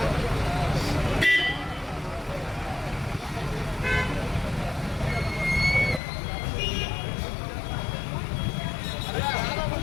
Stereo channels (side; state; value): right; drops out; at 6.0 s